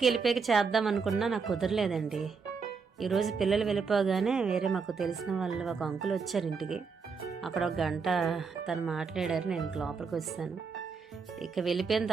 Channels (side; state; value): left; quieter; 5.3 dB